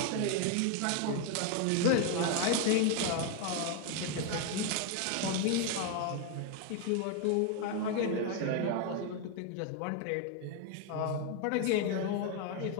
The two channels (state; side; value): different; both; correlation 0.01